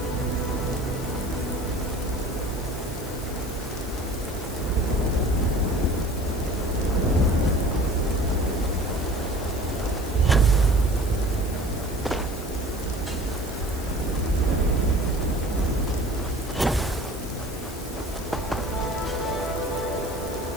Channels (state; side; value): noise; left; hiss, 15 dB below the sound